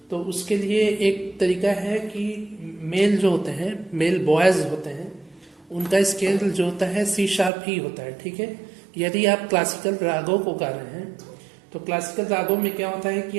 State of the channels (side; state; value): left; drops out; at 7.5 s